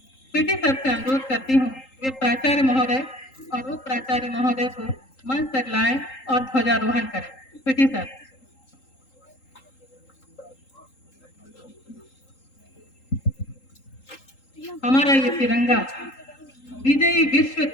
पीटी सर से अनुरोध करती हूँ, वे प्राचार्य महोदय और उप प्राचार्य महोदय को मंच तक लाएं और ध्वजारोहण करें। PT sir. हमारा ये तिरंगा, विजयी विश्व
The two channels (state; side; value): late; right; 3.8 ms